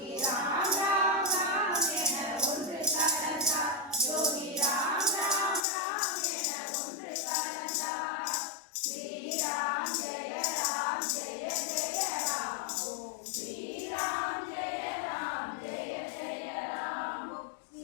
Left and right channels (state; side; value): drops out; right; at 5.6 s